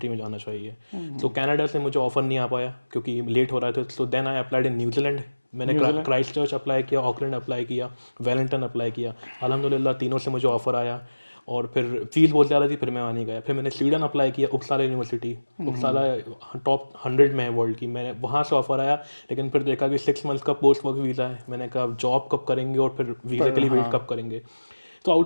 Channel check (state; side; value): inverted; both; correlation -1.00